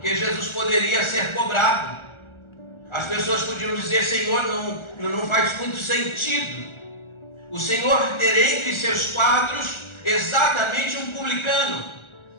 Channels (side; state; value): right; late; 1.4 ms